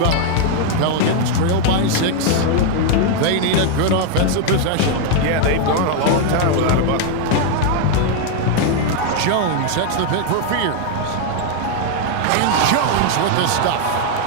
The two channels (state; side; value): different; both; correlation 0.00